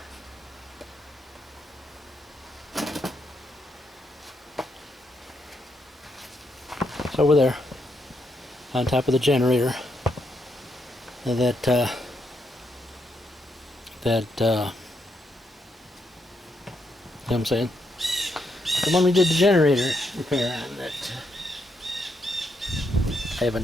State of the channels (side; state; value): both; normal; correlation 0.79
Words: It's over there, on top of the generator. You know what I'm saying? The one we did the generator repair on that I